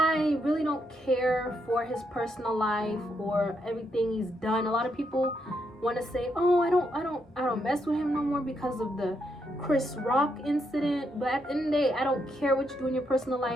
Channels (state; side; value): normal; both; correlation 0.79